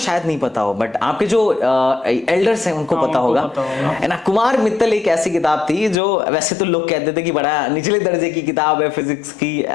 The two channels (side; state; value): right; drops out; at 6.0 s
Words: नहीं पता हो, बट आपके जो एल्डर्स हैं उनको पता होगा, है ना। कुमार मित्तल एक ऐसी किताब थी जो वैसे तो लोग कहते थे कि बड़ा निचले दर्जे की किताब है फिजिक्स की,